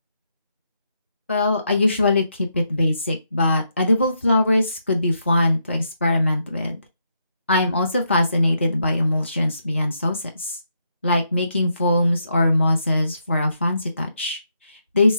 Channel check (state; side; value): inverted; both; correlation -0.79